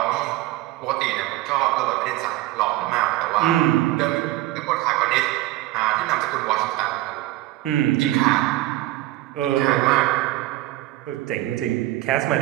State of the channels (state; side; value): quieter; left; 16.7 dB